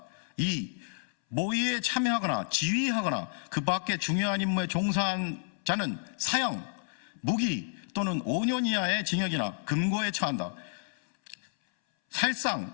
2. 모의에 참여하거나 지휘하거나 그 밖의 중요한 임무에 종사한 자는 사형, 무기 또는 5년 이하의 징역이나 금고에 처한다.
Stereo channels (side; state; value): right; silent; 58 dB below the other